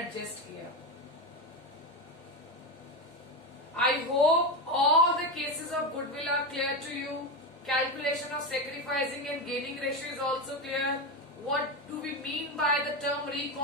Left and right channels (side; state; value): both; normal; correlation 0.15